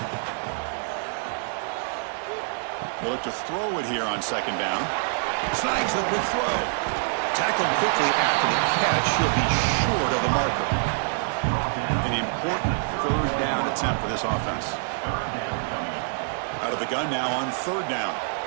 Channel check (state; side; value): silent; left; 61 dB below the other